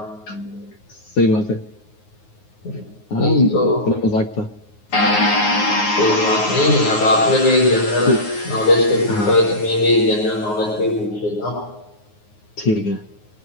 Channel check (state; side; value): late; right; 9.5 ms